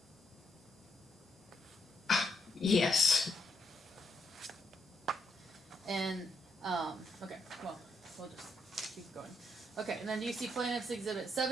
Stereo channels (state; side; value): normal; both; correlation 0.77